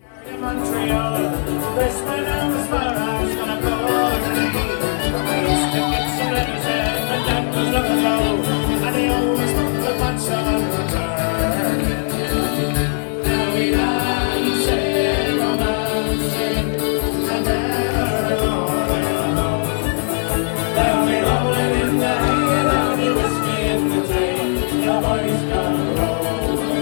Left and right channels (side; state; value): right; silent; 66 dB below the other